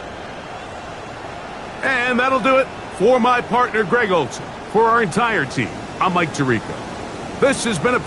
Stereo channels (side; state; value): both; identical; correlation 1.00